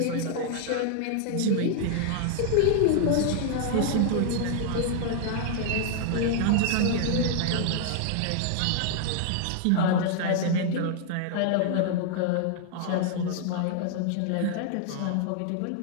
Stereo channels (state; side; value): different; both; correlation -0.01